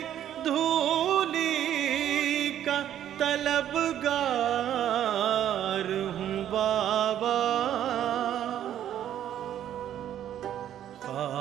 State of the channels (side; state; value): left; quieter; 10.9 dB